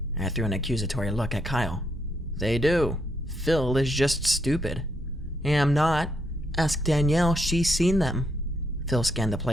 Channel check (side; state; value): both; normal; correlation 0.76